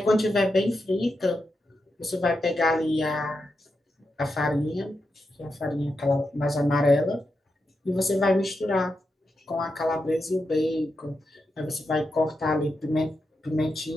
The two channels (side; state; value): both; normal; correlation 0.87